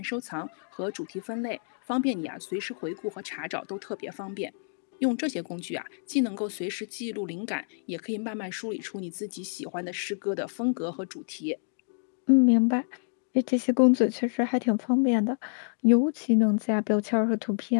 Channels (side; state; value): right; silent; digital silence